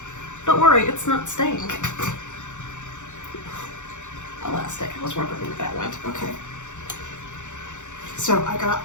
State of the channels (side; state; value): right; late; 0.85 ms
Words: don't worry, it's not staying. Elastic. I was wondering where that went. Okay. So I got